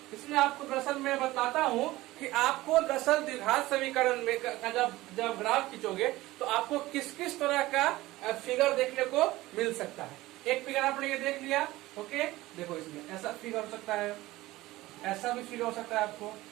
इसमें आपको दरअसल मैं बताता हूँ कि आपको दरअसल द्विघात समीकरण में जब ग्राफ खींचोगे तो आपको किस किस तरह का फिगर देखने को मिल सकता है। एक फिगर आपने ये देख लिया, ओके देखो इसमें ऐसा फिगर हो सकता है, ऐसा भी फिगर हो सकता है, आपको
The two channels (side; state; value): left; quieter; 18.0 dB